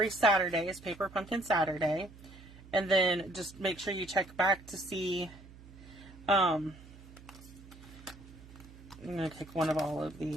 Saturday is Paper Pumpkin Saturday. And then just make sure you check back to see, I'm going to take one of all of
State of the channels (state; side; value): noise; right; hum, 19 dB below the sound